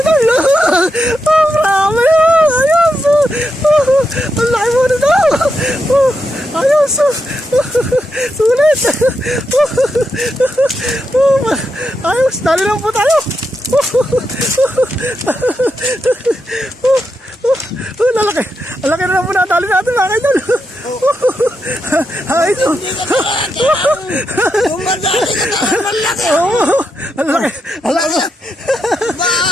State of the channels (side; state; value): both; normal; correlation 0.84